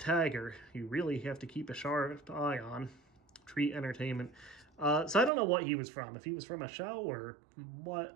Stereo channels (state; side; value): drops out; left; at 5.3 s